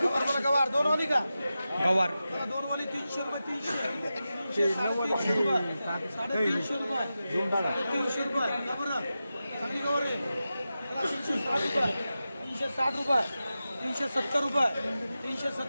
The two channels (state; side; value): inverted; both; correlation -0.93